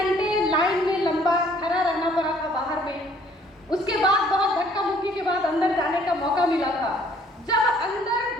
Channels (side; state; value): both; normal; correlation 0.60